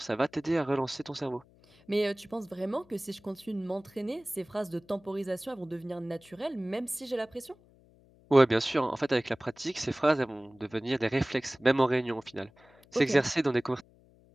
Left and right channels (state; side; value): noise; left; hum, 28 dB below the sound